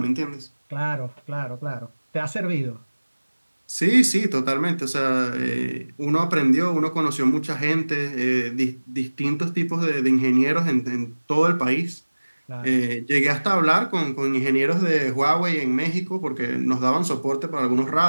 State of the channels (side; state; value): both; inverted; correlation -1.00